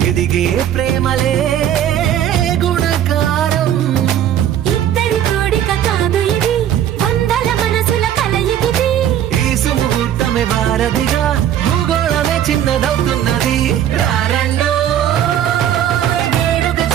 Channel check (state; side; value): quieter; left; 10.5 dB